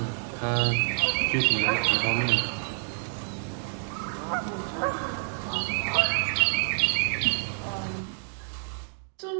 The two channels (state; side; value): silent; left; 56 dB below the other